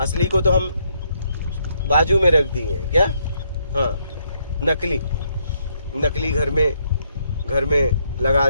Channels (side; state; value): both; inverted; correlation -0.74